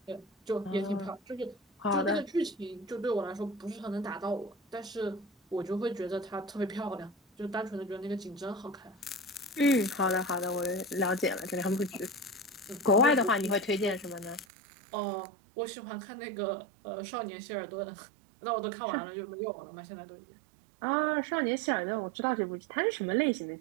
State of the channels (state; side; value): drops out; left; at 14.5 s